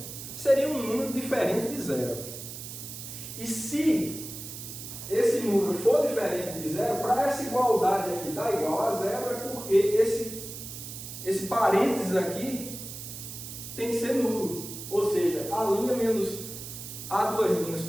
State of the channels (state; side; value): noise; right; hiss, 10 dB below the sound